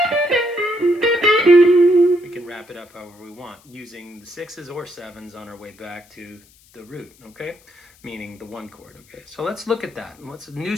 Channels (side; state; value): left; noise; hiss, 29 dB below the sound